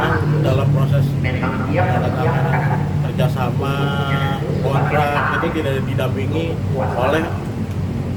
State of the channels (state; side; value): identical; both; correlation 1.00